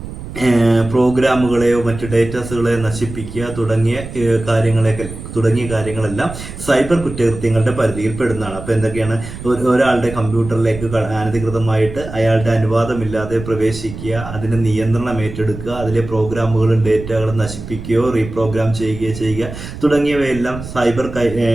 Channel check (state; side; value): noise; right; rumble, 11 dB below the sound